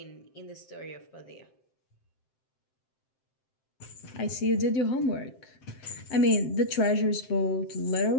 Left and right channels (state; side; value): late; right; 7.6 ms